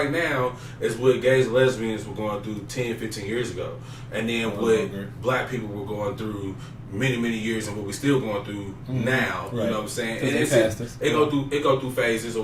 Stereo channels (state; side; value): identical; both; correlation 1.00